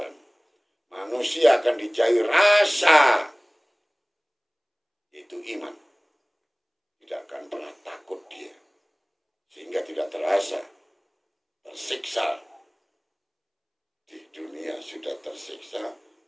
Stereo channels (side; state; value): both; identical; correlation 1.00